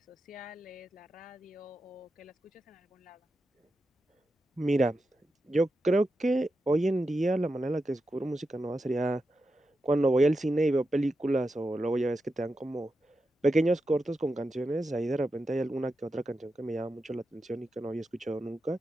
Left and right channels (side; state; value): both; normal; correlation 0.89